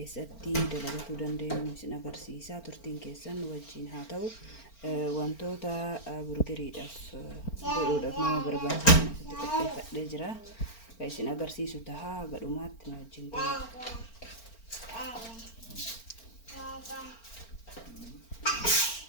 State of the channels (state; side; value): late; right; 4.4 ms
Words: dalagachuu dandeenyu isin agarsiisa. Turtiin keessan wajjin haa ta'u. Wantoota burgeriidhaaf godhuudhaaf nama barbaachisan asitti qopheeffadhee jira. Isin agarsiisu tahaa gadhumaatti nu wajjin ta'a.